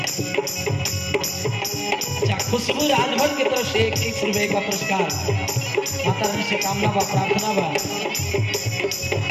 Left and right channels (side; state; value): both; identical; correlation 1.00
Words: अच्छा खुशबू राजभर की तरफ से 21 रुपये का पुरस्कार माता रानी से कामना बा प्रार्थना बा।